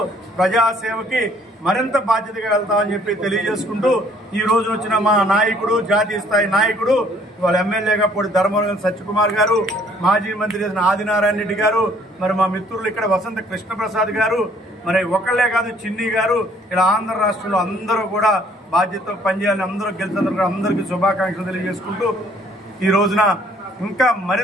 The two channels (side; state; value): both; normal; correlation 0.61